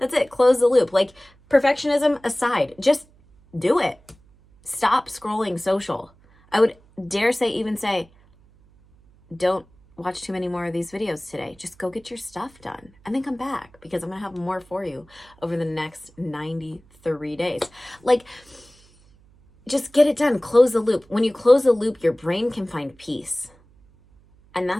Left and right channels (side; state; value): right; noise; hum, 29 dB below the sound